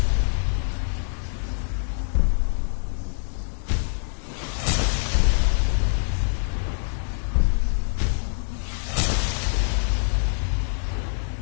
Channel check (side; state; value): right; silent; digital silence